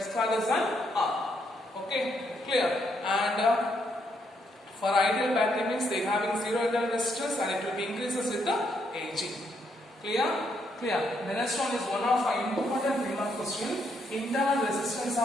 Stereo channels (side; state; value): both; normal; correlation 0.75